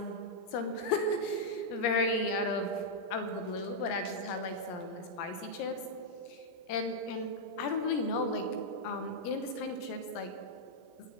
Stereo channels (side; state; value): right; late; 17 ms